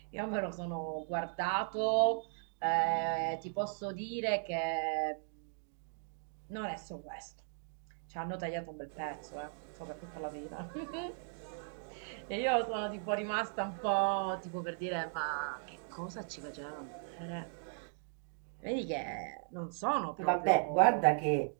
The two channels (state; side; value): silent; left; digital silence